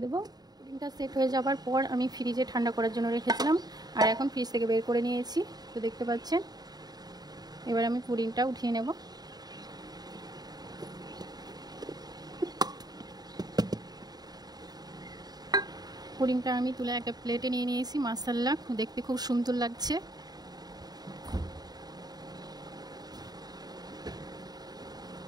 দেবো। পুডিংটা সেট হয়ে যাবার পর আমি ফ্রিজে ঠান্ডা করার জন্য রেখেছিলাম, আর এখন ফ্রিজ থেকে বের করে নিয়েছি, তো দেখতে পাচ্ছেন। এবার আমি পুডিংটা উঠিয়ে নেব। পুডিংটা আমি তুলে একটা প্লেটে নিয়ে নিয়েছি। মাশাআল্লাহ, দেখতে খুব সুন্দর লাগছে।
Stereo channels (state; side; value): late; left; 0.19 ms